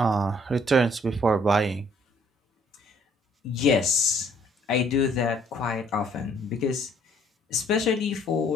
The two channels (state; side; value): normal; both; correlation 0.62